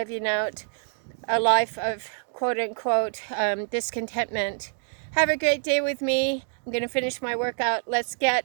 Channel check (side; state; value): left; silent; 61 dB below the other